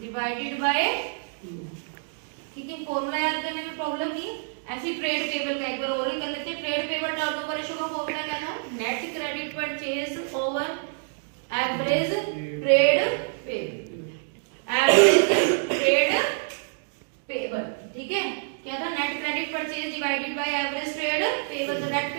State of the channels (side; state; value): left; silent; digital silence